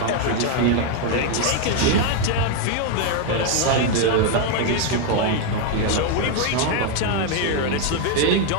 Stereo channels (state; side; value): different; both; correlation 0.01